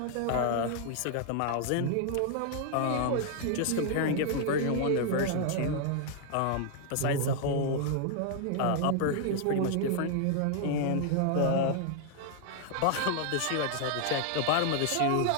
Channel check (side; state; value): both; different; correlation 0.00